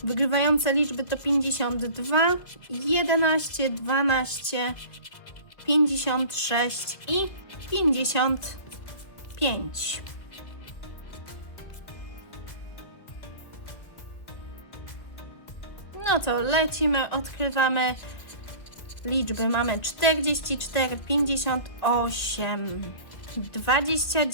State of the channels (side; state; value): right; late; 2.1 ms